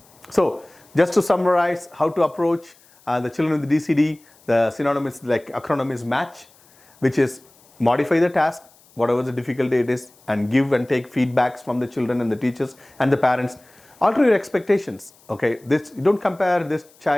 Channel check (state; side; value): noise; left; hiss, 29 dB below the sound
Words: So just to summarize how to approach the children with the DCD, the synonymous like acronym is MATCH, which is modify the task, whatever the difficulty it is, and give and take feedbacks from the children and the teachers and the parents. Alter your expectations. Okay, this, you don't compare this